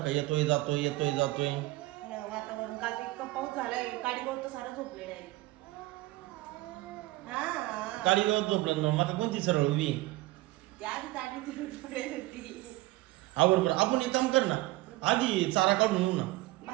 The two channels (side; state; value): left; quieter; 19.0 dB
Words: येतोय जातोय येतोय जातोय. वातावरण काल इतकं पाऊस झालाय काडीवर तर सारं झोपलेलं आहे. हा काळी गवत झोपलं ना माका कोणती सरळ उभी आधी चाडी फिरून पडेल होती. आवर बरं आपण एक काम कर ना आधी चारा काढून येऊ ना.